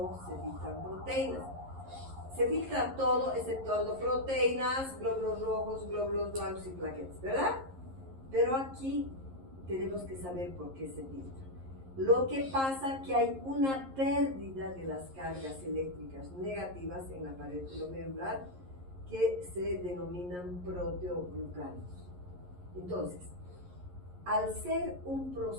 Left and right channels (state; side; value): late; left; 11 ms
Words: se filtran proteínas. Se filtra todo exceptuando proteínas, glóbulos rojos, glóbulos blancos y plaquetas, ¿verdad? Pero aquí tenemos que saber por qué se filtra. Lo que pasa es que hay una pérdida de las cargas eléctricas negativas en la pared glomerular que se denominan proteoglucanos. Entonces, al ser un